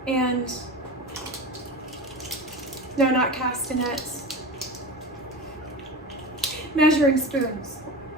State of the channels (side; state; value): both; normal; correlation 0.28